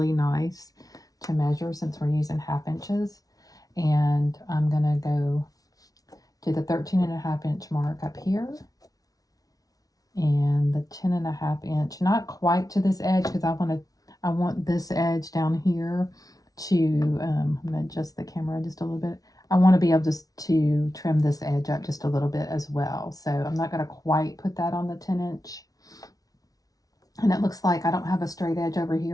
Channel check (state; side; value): late; right; 0.18 ms